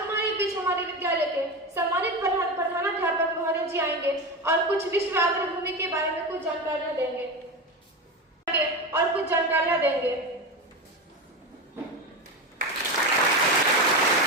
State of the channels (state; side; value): normal; both; correlation 0.20